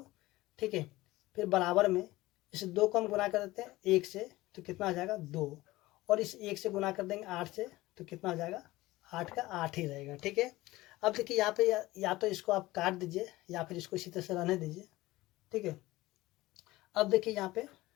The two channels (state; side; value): quieter; right; 18.6 dB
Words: ठीक है, फिर बराबर में इस 2 को हम गुना कर देते हैं 1 से, तो कितना हो जाएगा 2, और इस 1 से गुना कर देंगे 8 से, तो कितना हो जाएगा 8 का 8 ही रहेगा। ठीक है, अब देखिए यहाँ पे या तो इसको आप काट दीजिए या फिर इसको इसी तरह से रहने दीजिए। ठीक है, अब देखिए यहाँ पे